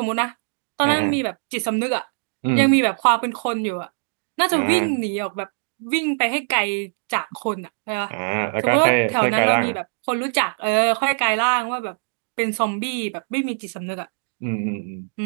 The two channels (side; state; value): left; silent; digital silence